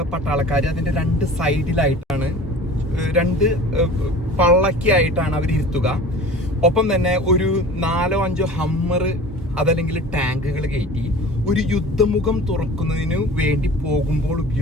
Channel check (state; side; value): normal; both; correlation 0.41